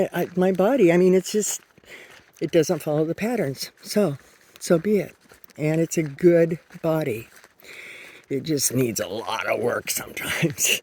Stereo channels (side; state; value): both; identical; correlation 1.00